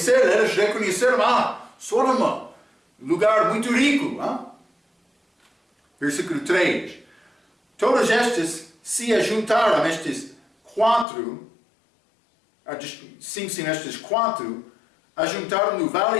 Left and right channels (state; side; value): drops out; right; at 11.1 s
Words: eles reconheceram, Sodoma, lugar muito rico. Hein? Versículo 3. Todos estes se ajuntaram, estes 4, estes 4, ajuntaram no